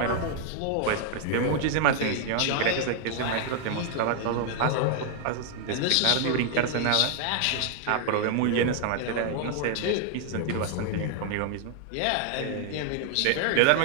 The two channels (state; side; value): different; both; correlation 0.00